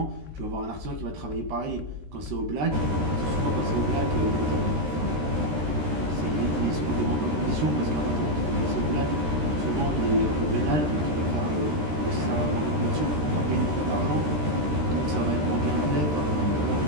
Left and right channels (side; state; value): left; late; 13 ms